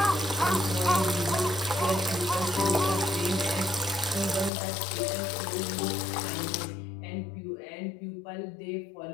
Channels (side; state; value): right; drops out; at 4.5 s